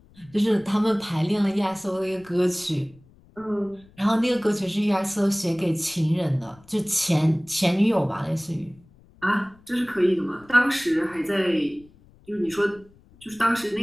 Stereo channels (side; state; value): left; noise; rumble, 27 dB below the sound